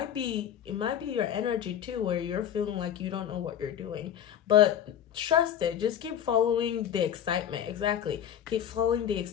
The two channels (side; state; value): right; quieter; 9.7 dB